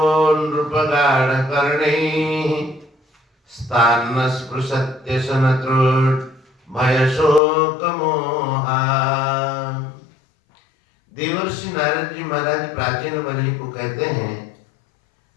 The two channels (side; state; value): right; drops out; at 7.4 s